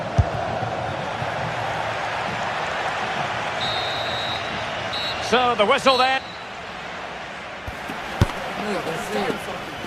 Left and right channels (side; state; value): both; identical; correlation 1.00